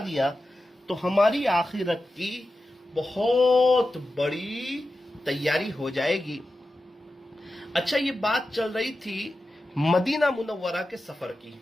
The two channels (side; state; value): both; normal; correlation 0.92